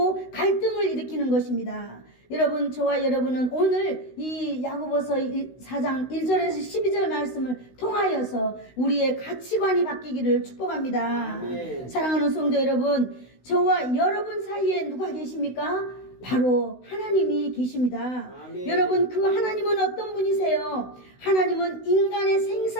갈등을 일으키는 것입니다. 여러분 저와 여러분은 오늘 이 야고보서 4장 1절에서 12절 말씀을 통하여서 우리의 가치관이 바뀌기를 축복합니다. 아멘. 사랑하는 성도 여러분, 저와 여러분 사이에 누가 계십니까? 바로 하나님이 계십니다. 아멘. 여러분, 그 하나님은 어떤 분이세요? 하나님은 인간의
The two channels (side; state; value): right; late; 16 ms